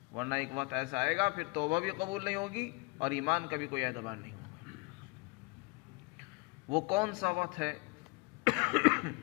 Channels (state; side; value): quieter; right; 27.6 dB